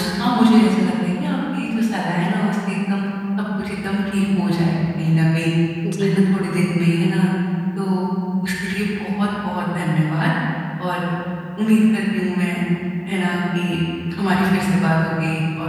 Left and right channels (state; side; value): identical; both; correlation 1.00